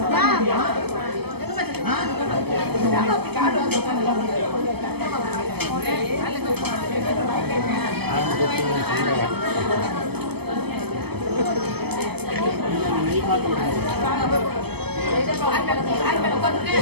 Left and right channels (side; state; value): left; late; 0.97 ms